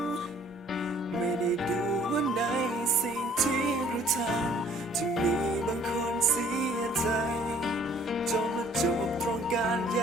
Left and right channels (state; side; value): normal; both; correlation 0.58